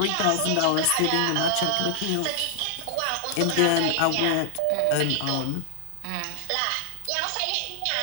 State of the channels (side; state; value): both; different; correlation 0.00